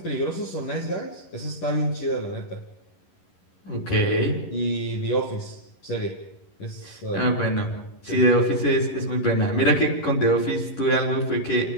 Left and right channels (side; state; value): right; late; 11 ms